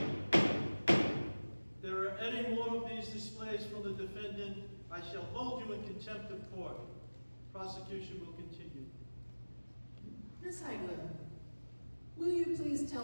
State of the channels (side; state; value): both; inverted; correlation -1.00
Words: there are any more of these displays from the defendant, I shall hold you in contempt of court. Prosecution will continue. Miss Heigler, will you please